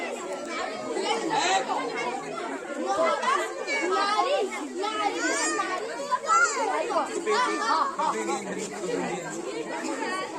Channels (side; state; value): both; identical; correlation 1.00